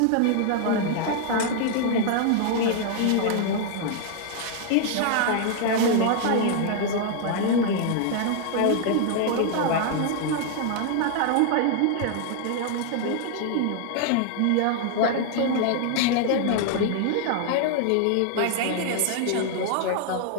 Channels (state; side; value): different; both; correlation 0.00